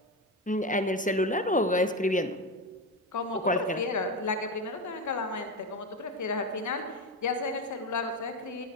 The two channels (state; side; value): normal; both; correlation 0.17